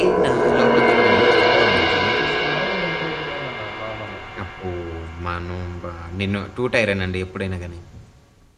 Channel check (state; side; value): identical; both; correlation 1.00